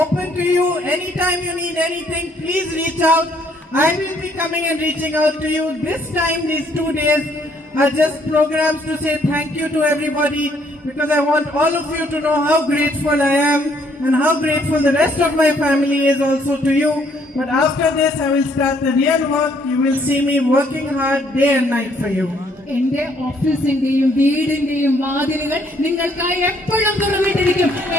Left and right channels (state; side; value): normal; both; correlation 0.66